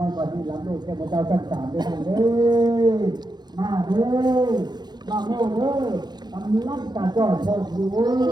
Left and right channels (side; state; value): left; late; 0.20 ms